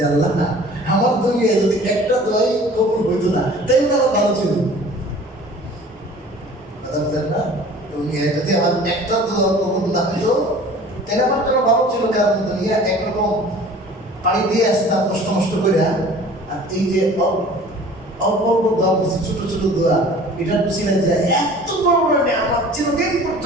আল্লাহ না, আমার দুনিয়া যদি একটা দোয়াই কবুল হইতো না তাই আমার ভালো ছিল, কথা বলেন না? দুনিয়ায় যদি আমার একটা দোয়া কবুল না হইতো তাহলে আমার জন্য ভালো ছিল, কারণ দুনিয়া একরকম পানি দিয়ে আসতাম কষ্ট মষ্ট করে, আর এই যে অল্প অল্প দোয়া করছি, ছোট ছোট দোয়া, এটা ছিলেন যে এত বড় বড় আমার চিরদিন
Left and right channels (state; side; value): normal; both; correlation 0.46